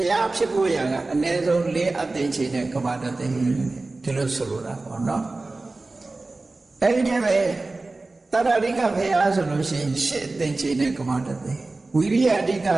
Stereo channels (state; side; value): quieter; left; 3.3 dB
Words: ရားဖြစ်ဖို့ရကအနည်းဆုံး4အသင်္ချေနဲ့ကဘာတသိန်းဒီလိုဆိုလိုတာပေါ့နော်အဲဒီတည်းပဲတရရိကဘုရားဆိုလို့ရှိရင်8အသင်္ချေနဲ့ကဘာတသိန်းဝိရိယအဓိက